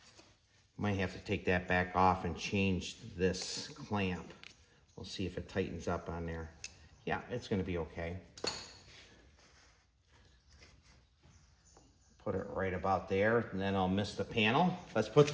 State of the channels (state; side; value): identical; both; correlation 1.00